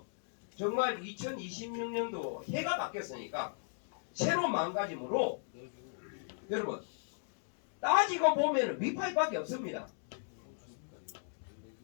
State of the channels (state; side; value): silent; right; digital silence